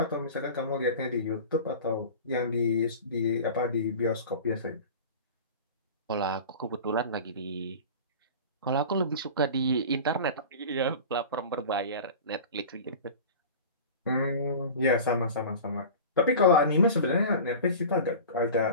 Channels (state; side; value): inverted; both; correlation -0.35